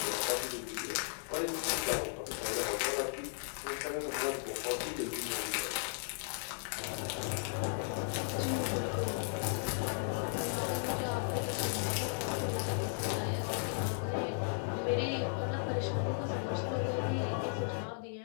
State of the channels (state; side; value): silent; right; digital silence